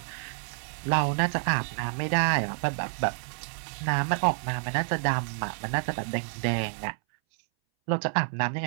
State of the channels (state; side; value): silent; left; 59 dB below the other